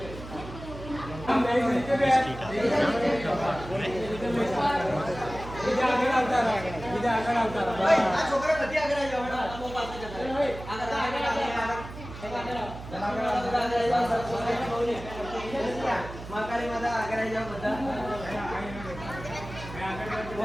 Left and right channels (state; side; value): noise; right; hum, 12 dB below the sound